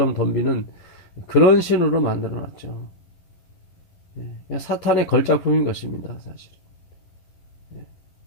덤비는 그런 신으로 만들어 놨죠. 사탄의 걸작품인 것입니다, 사실.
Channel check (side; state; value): right; late; 11 ms